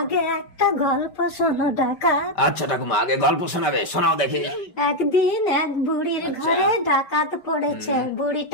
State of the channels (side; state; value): right; late; 5.2 ms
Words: একটা গল্প শোনো ডাকাত। আচ্ছা ঠাকুমা, আগে গল্প শোনাবে, শোনাও দেখি। একদিন এক বুড়ির ঘরে ডাকাত পড়েছে।